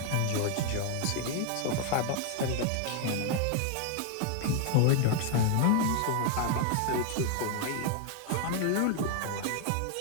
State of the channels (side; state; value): both; different; correlation 0.00